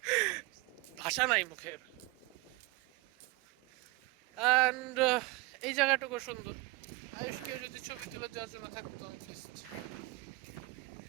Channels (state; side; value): quieter; left; 22.2 dB